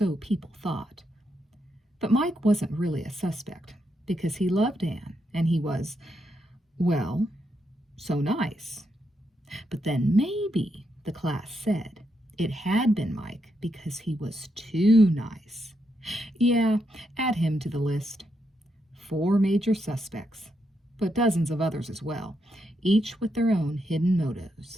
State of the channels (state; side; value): normal; both; correlation 0.81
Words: people thought. But Mike wasn't really a suspect, because he loved Anne, and he was, well, so nice. But then maybe, the class said, it had been Mike because he was too nice. Yeah, add him to the list. 4 major suspects, but dozens of others as well, each with their own hidden